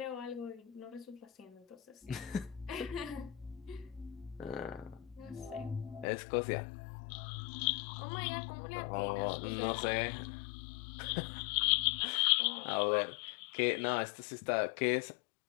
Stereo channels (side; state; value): right; drops out; at 6.1 s